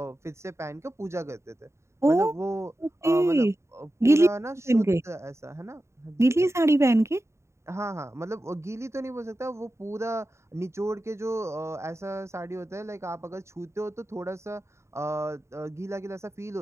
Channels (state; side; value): late; left; 0.14 ms